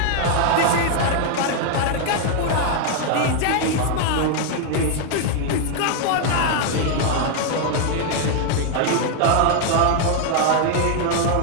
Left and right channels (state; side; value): different; both; correlation 0.00